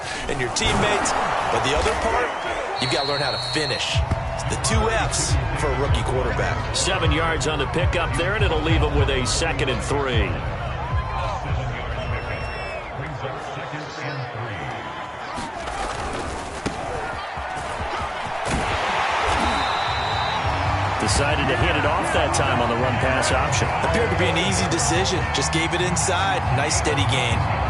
and your teammates. But the other part, you've got to learn how to finish. The 2 F's for a rookie quarterback. 7 yards on the pickup there, and it'll leave him with a 2nd and 3. Decided to hit it off that time on the run-pass option. Appeared to be an easy decision. Just gave it inside. Nice steady gain.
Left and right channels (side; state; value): both; identical; correlation 1.00